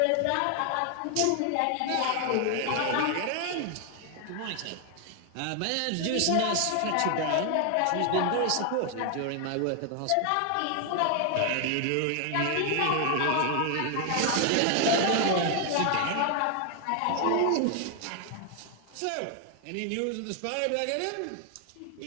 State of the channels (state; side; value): different; both; correlation 0.00